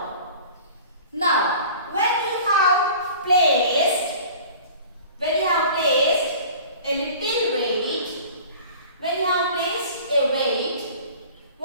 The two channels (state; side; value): inverted; both; correlation -0.43